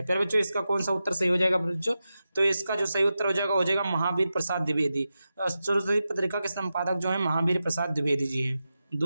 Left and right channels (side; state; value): both; inverted; correlation -0.91